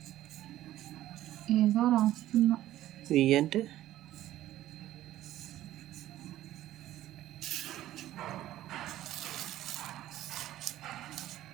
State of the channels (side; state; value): left; quieter; 13.9 dB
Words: ఏదో రాస్తున్నా. వి అంటే